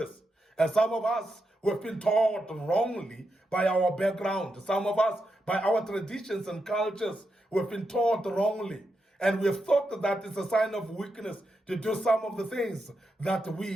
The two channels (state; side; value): normal; both; correlation 0.85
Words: And some of us, we've been taught wrongly by our background. Some of us, by our traditions and cultures, we've been taught wrongly. And we've thought that it's a sign of weakness to do some of the things that